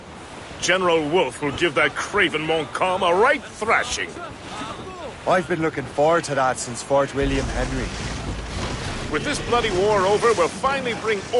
General Wolfe will give that craven Montcalm a right thrashing. I've been looking forward to that since Fort William Henry. With this bloody war over, we'll finally bring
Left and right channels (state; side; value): identical; both; correlation 1.00